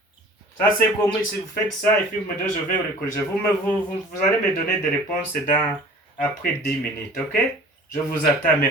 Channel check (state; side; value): normal; both; correlation 0.45